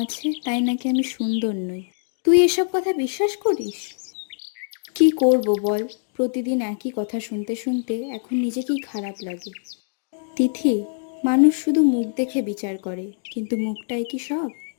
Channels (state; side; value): silent; right; digital silence